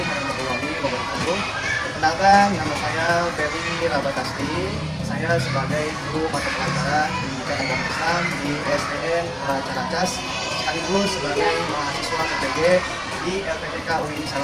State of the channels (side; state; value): both; identical; correlation 1.00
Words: warahmatullahi wabarakatuh. Perkenalkan, nama saya Ferry Rabatasti. Saya sebagai guru mata pelajaran Pendidikan Agama Islam di SDN Caracas, sekaligus sebagai mahasiswa PPG di LPTK UIN